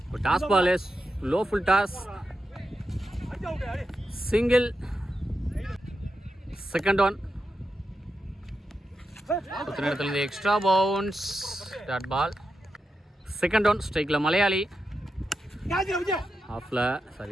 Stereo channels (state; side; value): normal; both; correlation 0.88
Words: toss ball low full toss, single. Second one இடத்துலேருந்து extra bounce, dot ball. Second one ஸ்ட்ரைக்கில் மலையாளி, ஆஃபில்